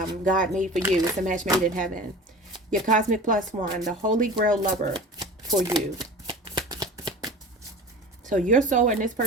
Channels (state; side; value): normal; both; correlation 0.37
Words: God made for you. It's a match made in heaven. Your cosmic plus one, the Holy Grail lover for you. So your soul and this